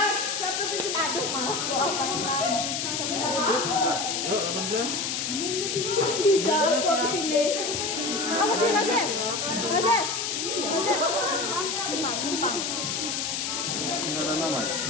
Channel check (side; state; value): left; noise; hiss, 1 dB below the sound